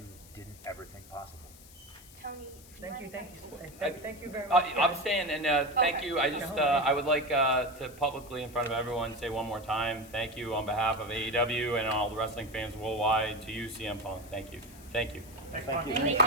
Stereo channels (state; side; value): noise; left; hiss, 21 dB below the sound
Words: didn't ever think possible. Tony, Thank you very much. I'm staying, and thank you. I just I would like to publicly, in front of everyone, say one more time, thank you on behalf of AEW and all the wrestling fans worldwide to you, CM Punk. Thank you. Thank you. Thank you. Just